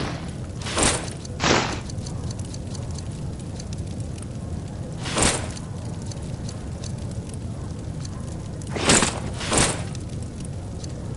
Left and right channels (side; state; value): both; identical; correlation 1.00